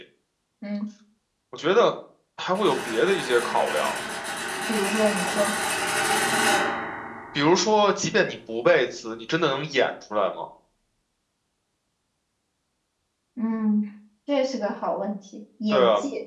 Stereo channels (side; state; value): both; identical; correlation 1.00